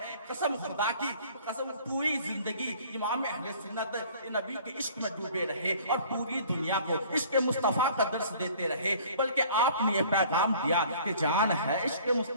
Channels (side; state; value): both; inverted; correlation -0.51